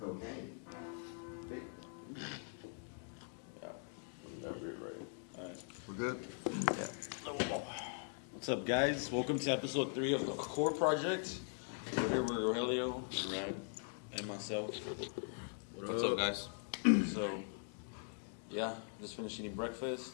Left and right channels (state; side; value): silent; right; 50 dB below the other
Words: yeah, that weird, right? All right. We're good? What's up, guys? Welcome to episode 3 of the Core Project. We're here with Rogelio, Rad, and myself. What's up, guys? So, yeah, just finished eating